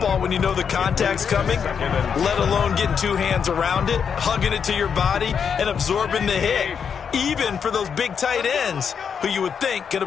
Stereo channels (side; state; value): right; quieter; 7.0 dB